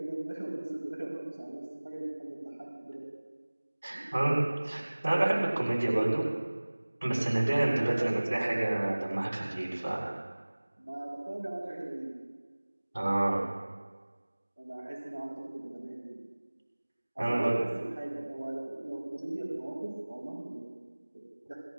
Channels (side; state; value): both; inverted; correlation -1.00